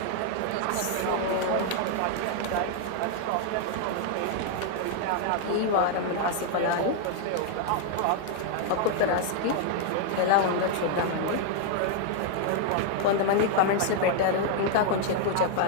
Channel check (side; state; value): both; different; correlation 0.00